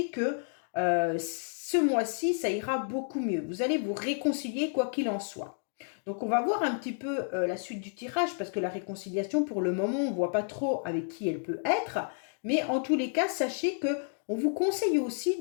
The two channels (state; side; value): silent; right; 56 dB below the other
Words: que ce mois-ci, ça ira beaucoup mieux. Vous allez vous réconcilier quoi qu'il en soit. Donc, on va voir un petit peu la suite du tirage, parce que la réconciliation, pour le moment, on ne voit pas trop avec qui elle peut être, mais en tous les cas, sachez que on vous conseille